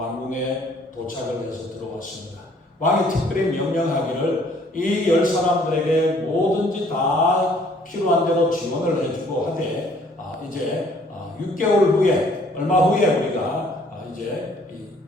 도착을 해서 들어왔습니다. 왕이 특별히 명령하기를 이 10사람들에게 뭐든지 다 필요한 대로 지원을 해주고 하되 이제 6개월 후에 얼마 후에 우리가 이제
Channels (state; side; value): normal; both; correlation 0.60